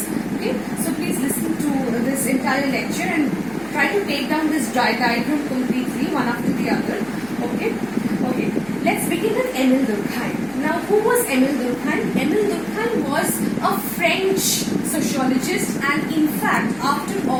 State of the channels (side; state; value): right; noise; hum, 22 dB below the sound